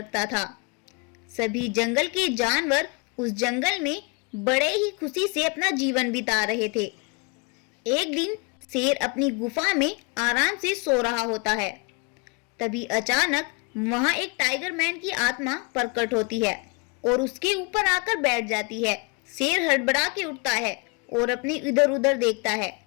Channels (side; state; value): right; quieter; 31.4 dB